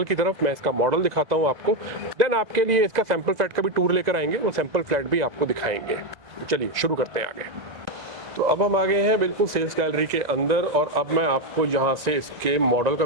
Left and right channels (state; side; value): late; left; 2.0 ms